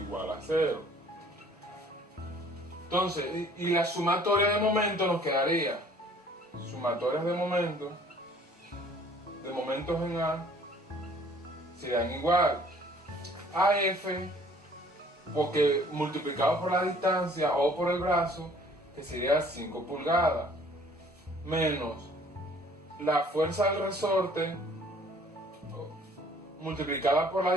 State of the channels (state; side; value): normal; both; correlation 0.55